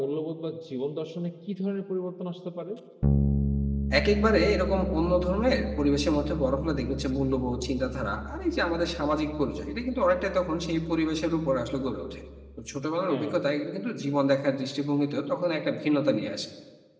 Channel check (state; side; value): identical; both; correlation 1.00